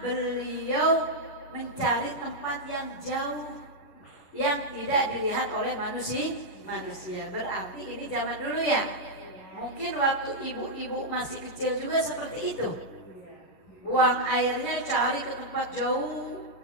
beliau mencari tempat yang jauh yang tidak dilihat oleh manusia. Berarti ini zaman dulu ya. Mungkin waktu ibu-ibu masih kecil juga seperti itu. Buang airnya cari ke tempat jauh.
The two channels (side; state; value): right; late; 11 ms